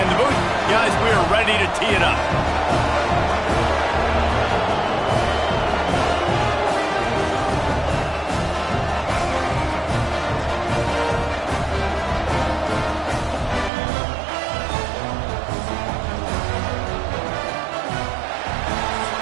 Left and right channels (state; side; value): drops out; left; at 13.7 s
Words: the booth. Guys, we are ready to tee it up.